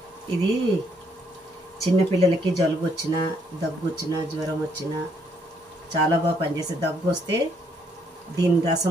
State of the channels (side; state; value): both; normal; correlation 0.70